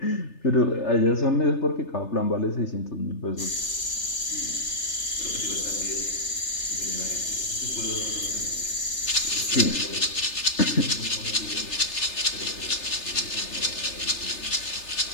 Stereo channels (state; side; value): late; right; 3.3 ms